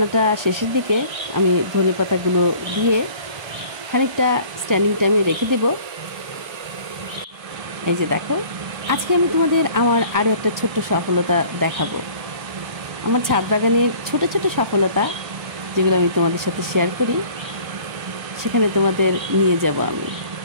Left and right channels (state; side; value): late; left; 1.3 ms